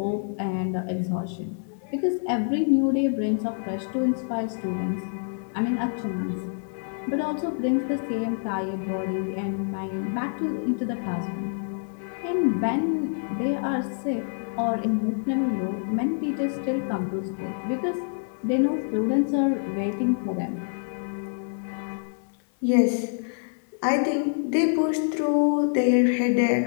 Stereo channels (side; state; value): right; silent; digital silence